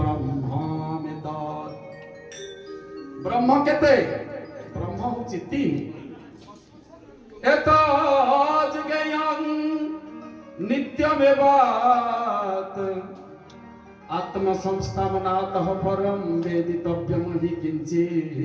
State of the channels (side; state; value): both; identical; correlation 1.00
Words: ब्रह्म केते? ब्रह्म होछि तीन। एतज्ज्ञेयं नित्यमेवात् आत्मसंस्थानातः परं वेदितव्यं हि